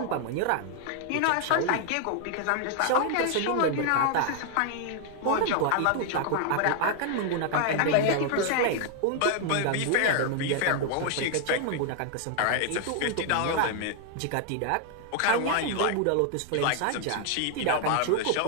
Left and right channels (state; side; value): different; both; correlation 0.00